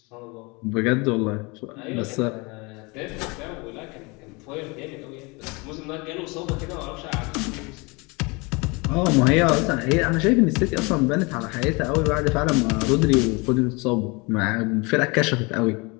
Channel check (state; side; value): quieter; right; 27.6 dB